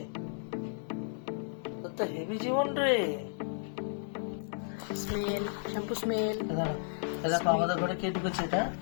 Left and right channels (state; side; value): silent; right; 56 dB below the other